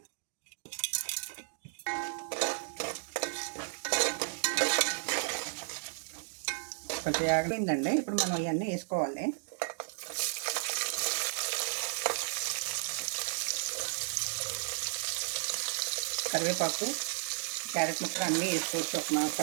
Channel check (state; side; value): silent; left; digital silence